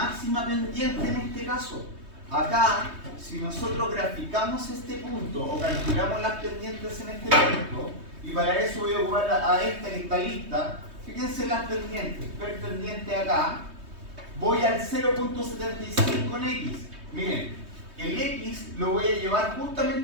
pendiente en este caso. Acá, si nosotros graficamos este punto o calculamos las pendientes en este punto, y para eso voy a ocupar a esta que está lista, fíjense las pendientes. Per pendiente acá, voy al 0.75 en X. Miren, el X lo voy a llevar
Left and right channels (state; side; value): late; left; 3.2 ms